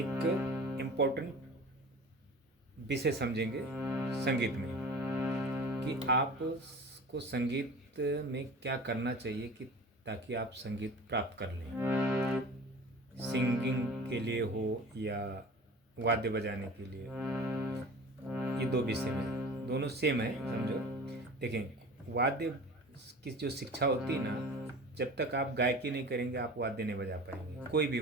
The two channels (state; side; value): normal; both; correlation 0.39